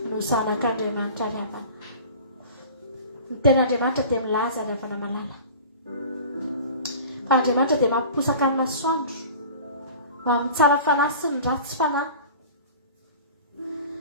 no zanak'Andriamanitra ravana. Ny ten'Andriamanitra dia milaza ravana malala. Fa Andriamanitra dia mampiposaka ny masoandro ho amin'ny tsara fanahy sy ny ratsy fanahy.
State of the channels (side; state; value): both; inverted; correlation -0.40